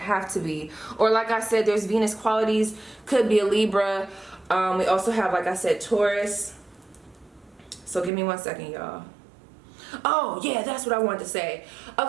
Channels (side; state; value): left; drops out; at 8.1 s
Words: to be. Or like I said, there's Venus qualities, could be a Libra. We also have, like I said, Taurus. So give me 1 second, y'all. Oh yeah, that's what I wanted to say.